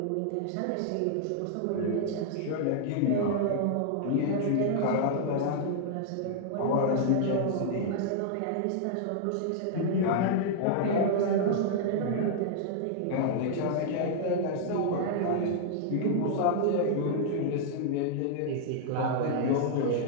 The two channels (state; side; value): different; both; correlation -0.01